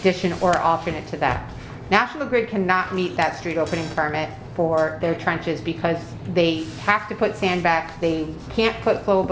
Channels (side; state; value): both; identical; correlation 1.00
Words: or alternate to that. National Grid cannot meet that street opening permit for their trenches because they have to put sand back. They can't put